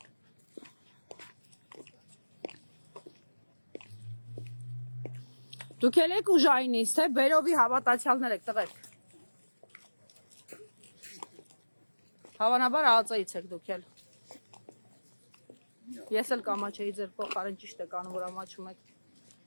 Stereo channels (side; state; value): both; inverted; correlation -1.00